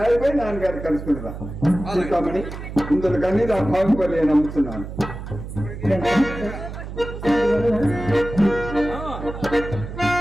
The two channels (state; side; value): noise; right; hum, 9 dB below the sound